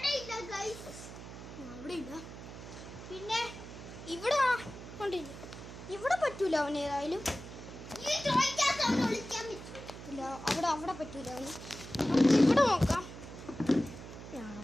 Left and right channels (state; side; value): noise; right; hum, 12 dB below the sound